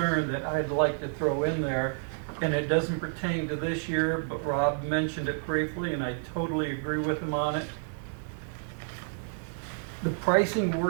that I'd like to throw in there, and it doesn't pertain to this year, but Rob mentioned it briefly, and I totally agree with him on it. The pricing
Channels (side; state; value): left; silent; digital silence